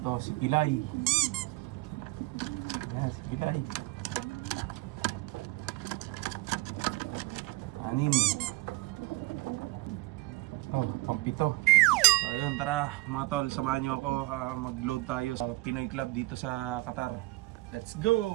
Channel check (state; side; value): quieter; left; 21.4 dB